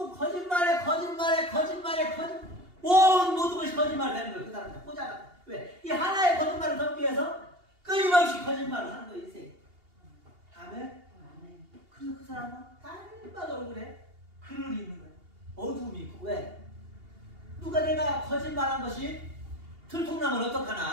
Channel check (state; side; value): late; left; 2.8 ms